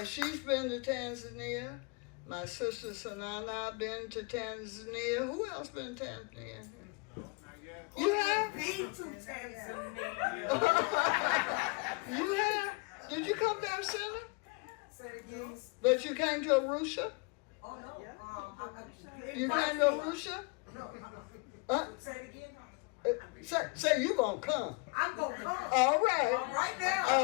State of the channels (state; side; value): quieter; right; 29.9 dB